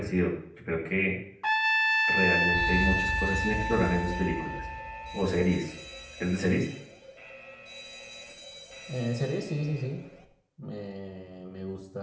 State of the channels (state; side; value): identical; both; correlation 1.00